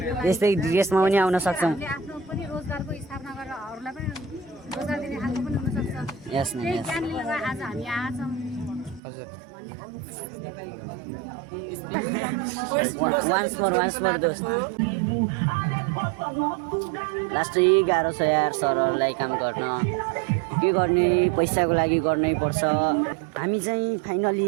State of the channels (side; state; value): left; drops out; at 9.0 s